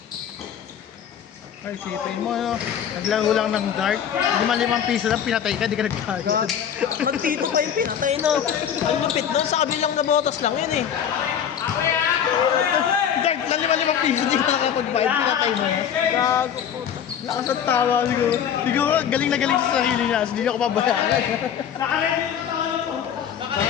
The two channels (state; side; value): quieter; right; 8.7 dB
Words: Ay, sipin mo, no? Naglaro lang ng dart. 5 piso lang, pinatay ka, di ka nagkagad. Magtito pa yung pinatay na. Ang lupit doon, sa kabilang na botas lang yun eh. Dart lang 5 piso, di ka nakapag-vibe, pinatay mo. Gago po. Lakas at tawa siguro. Siguro, galing na galing sa sarili niya, so hindi ako pabayaan.